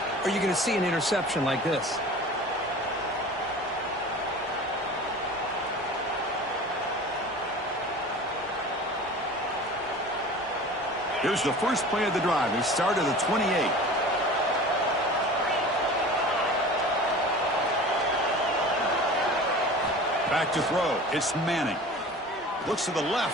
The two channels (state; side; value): normal; both; correlation 0.39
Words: or you're going to see an interception like this. Here's the first play of the drive. They start at the 28. Back to throw. It's Manning. Looks to the